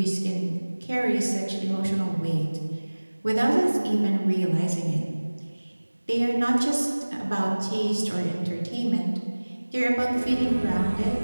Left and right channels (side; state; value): both; inverted; correlation -1.00